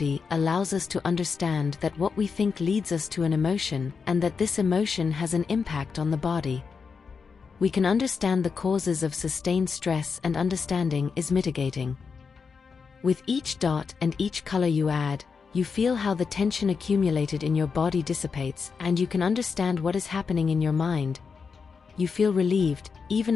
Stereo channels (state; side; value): quieter; right; 5.4 dB